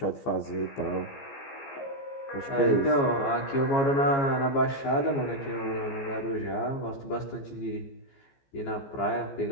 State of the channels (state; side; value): late; right; 15 ms